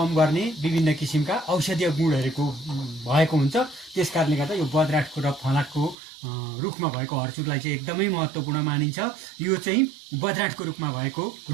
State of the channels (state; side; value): drops out; left; at 6.0 s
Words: गर्ने विभिन्न किसिमका औषधीय गुणहरूको भएको हुन्छ। त्यसकारणले गर्दा यो बज्राँटको र फलाटको रुखमा भएको हर्चुरलाई चाहिँ एकदमै महत्त्वपूर्ण मानिन्छ। यो चाहिँ बज्राँटको रुखमा भएको